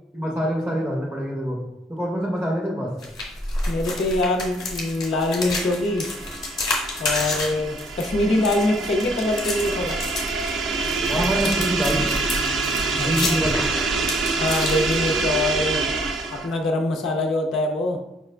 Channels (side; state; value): both; normal; correlation 0.63